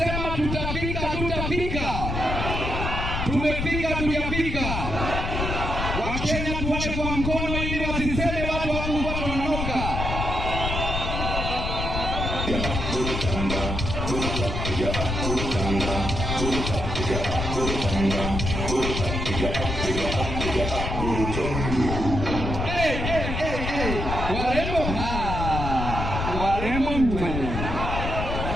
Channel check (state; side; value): noise; left; rumble, 3 dB below the sound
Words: tutafika, tutafika. Tumefika, tujafika. Wakenya tuwache kwa mkono ili wasiseme watu wangu watu wanaoka. Warembo warembo mwe.